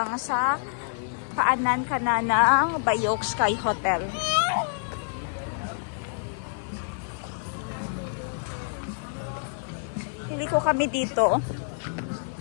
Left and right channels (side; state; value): right; silent; 60 dB below the other